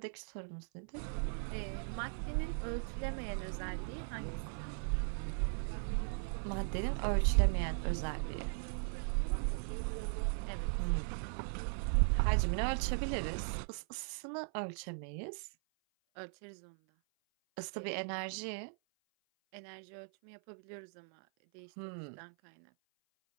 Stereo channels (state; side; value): silent; left; 52 dB below the other